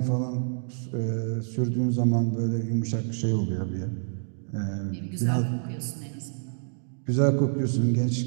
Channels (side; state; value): left; silent; digital silence